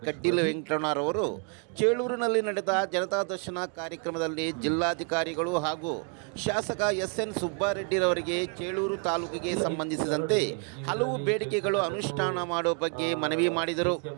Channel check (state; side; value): quieter; left; 39.9 dB